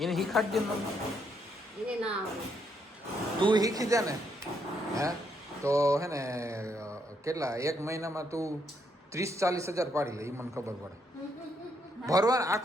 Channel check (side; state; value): both; normal; correlation 0.75